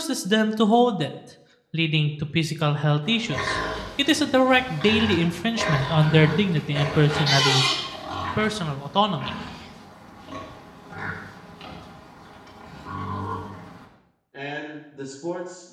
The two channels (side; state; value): both; identical; correlation 1.00